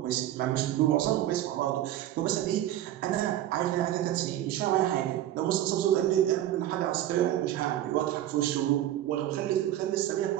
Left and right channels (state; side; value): quieter; left; 12.8 dB